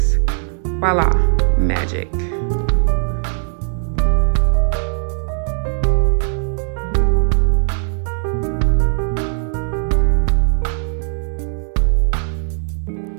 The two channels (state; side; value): silent; left; 67 dB below the other